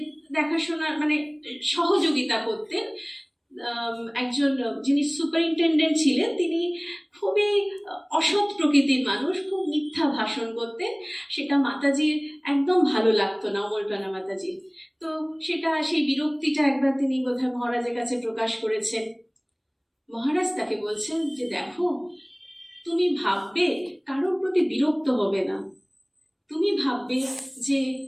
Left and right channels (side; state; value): both; identical; correlation 1.00